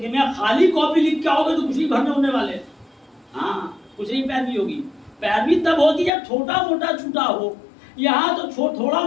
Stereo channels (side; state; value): right; drops out; at 6.1 s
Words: میں خالی کاپی لکھ کے آؤ گے تو کچھ نہیں بھرنے ہونے والے. ہاں کچھ نہیں پیروی ہوگی. پیروی تب ہوتی جب چھوٹا موٹا چھوٹا ہو. یہاں تو تھوڑا